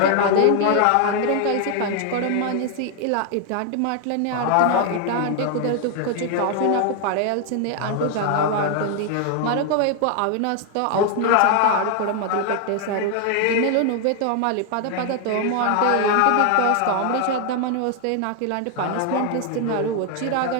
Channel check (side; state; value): both; different; correlation 0.00